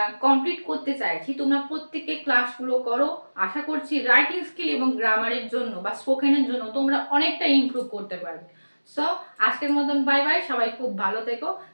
কমপ্লিট করতে চাইছি, তোমরা প্রত্যেকে ক্লাসগুলো করো। আশা করছি রাইটিং স্কিল এবং গ্রামারের জন্য বা স্পোকেনের জন্য তোমরা অনেকটা ইমপ্রুভ করতে পারবে। সো আজকের মতন বাই বাই, সবাই খুব ভালো থেকো,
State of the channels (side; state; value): both; inverted; correlation -1.00